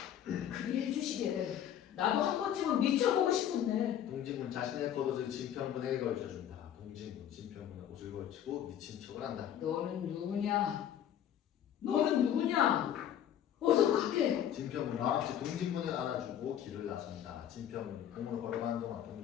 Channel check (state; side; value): quieter; right; 10.2 dB